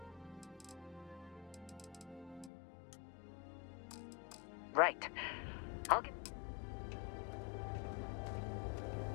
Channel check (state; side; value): drops out; right; at 2.5 s